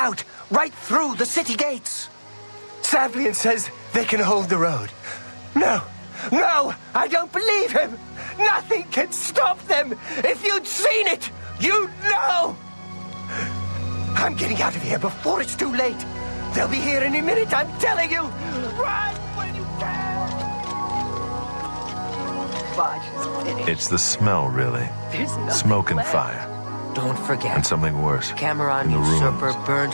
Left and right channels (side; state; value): both; inverted; correlation -1.00